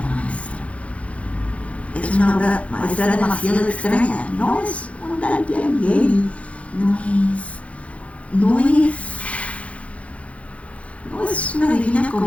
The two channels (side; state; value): right; late; 0.064 ms